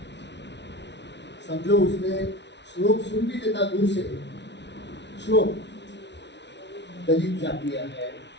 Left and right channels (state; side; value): late; right; 0.51 ms